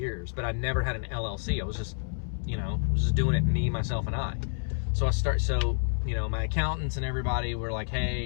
but I never had an LLC. I was just, you know, doing it me, myself, and I. So you know, my accountants and everybody were like,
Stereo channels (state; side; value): silent; right; 59 dB below the other